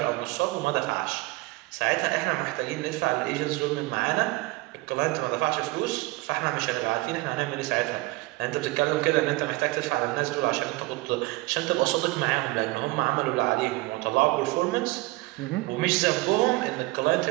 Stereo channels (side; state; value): left; quieter; 21.6 dB